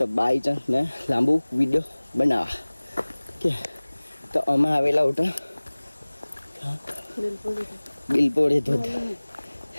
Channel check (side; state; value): both; inverted; correlation -1.00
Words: बाय चांस मैं लांबू वीडियो बनावा के तो अमा आवेला उठा बिलपोड़ी धोध